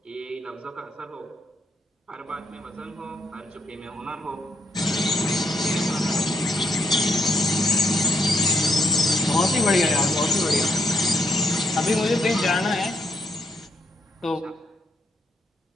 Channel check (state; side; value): normal; both; correlation 0.74